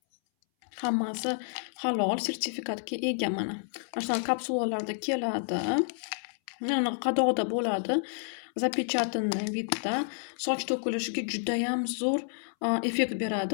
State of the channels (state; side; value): silent; right; 58 dB below the other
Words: Hammasi halol, sertifikatga ega mana. Mana shunaqa kapsulalarda keladi. Mana qadoqda bo'ladi. Запечатанный vidda soch to'kilishiga judayam zo'r effekt